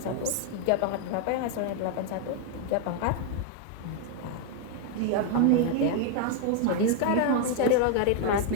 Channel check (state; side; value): different; both; correlation 0.00